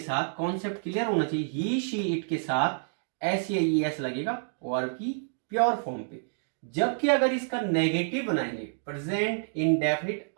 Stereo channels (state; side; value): silent; left; digital silence